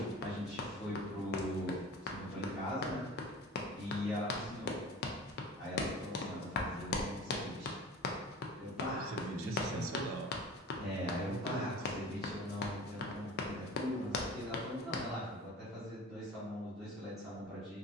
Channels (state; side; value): normal; both; correlation 0.38